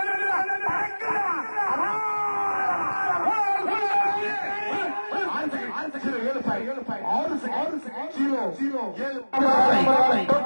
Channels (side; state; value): both; inverted; correlation -1.00